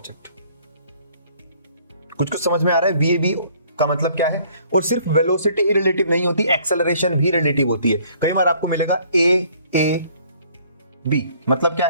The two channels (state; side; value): inverted; both; correlation -0.59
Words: कुछ समझ में आ रहा है। VAB का मतलब क्या है, और सिर्फ वेलोसिटी ही रिलेटिव नहीं होती, एक्सेलरेशन भी रिलेटिव होती है। कई बार आपको मिलेगा AAB, मतलब क्या